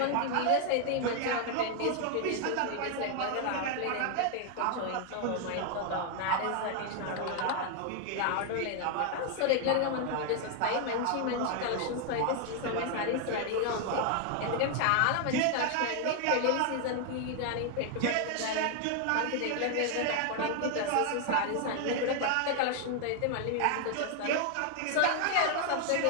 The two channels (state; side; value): different; both; correlation 0.00